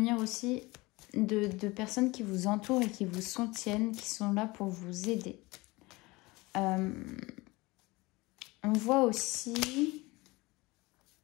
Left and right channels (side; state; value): right; quieter; 22.6 dB